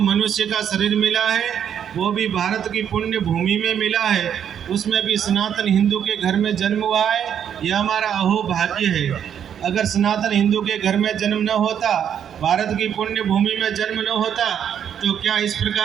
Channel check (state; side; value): quieter; left; 8.8 dB